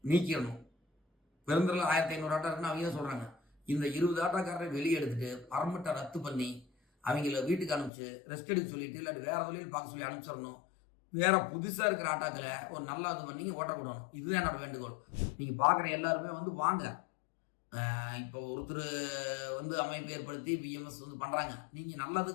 நீக்கிடணும். பெருந்துறையில் 1500 ஆட்டோ இருக்குன்னு அவங்க தான் சொல்கிறாங்க. இந்த 20 ஆட்டோக்காரரை வெளியே எடுத்துட்டு பர்மிட்டை ரத்து பண்ணி அவங்கள வீட்டுக்கு அனுப்பிச்சு ரெஸ்ட் எடுக்க சொல்லிட்டு இல்லாட்டி வேறு தொழில் பார்க்க சொல்லி அனுப்பிச்சிடணும். வேற புதுசாக இருக்கிற ஆட்டோக்களை ஒரு நல்லா இது பண்ணி ஓட்டக்கூடணும். இதுதான் என்னோட வேண்டுகோள். நீங்கள் பார்க்குற எல்லாருமே வந்து வாங்க. இப்போ ஒருத்தர் வந்து அமைப்பு ஏற்படுத்தி பிஎம்எஸ் வந்து பண்ணுறாங்க. நீங்கள்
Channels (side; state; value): right; drops out; at 7.9 s